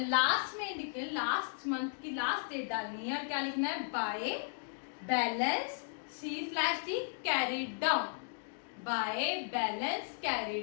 लास्ट में लिखे, लास्ट मंथ की लास्ट डेट डालनी है, और क्या लिखना है? By balance C/D carry down. Bye balance carry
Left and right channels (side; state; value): right; silent; digital silence